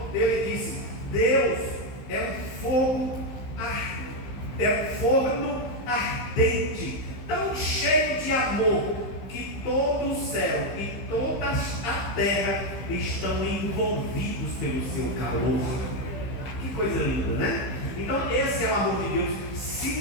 ele disse: Deus é um forno ardente, tão cheio de amor, que todo o céu e toda a terra estão envolvidos pelo seu calor. Que coisa linda, né? Então esse é o amor de Deus.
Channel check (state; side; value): late; right; 15 ms